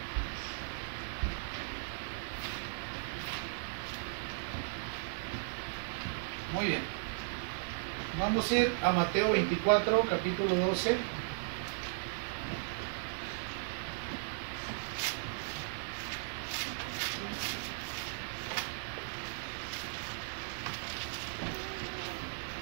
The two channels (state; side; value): silent; left; digital silence